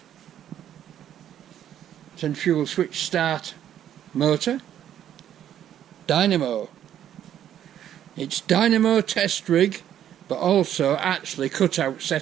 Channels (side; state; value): left; quieter; 10.6 dB